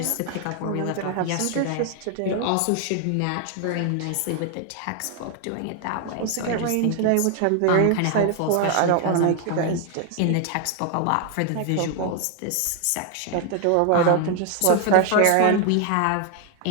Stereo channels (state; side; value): different; both; correlation 0.01